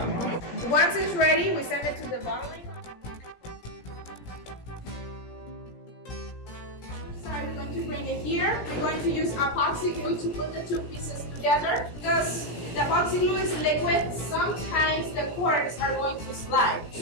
Once it's ready, we send it to the bottling. We're going to bring it here. We're going to use epoxy glue to put the two pieces together. Because the epoxy glue is liquid, sometimes the corks are going to slide.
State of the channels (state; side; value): late; right; 17 ms